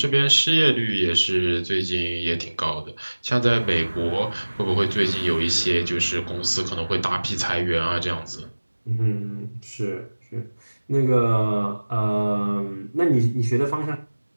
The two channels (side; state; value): both; inverted; correlation -1.00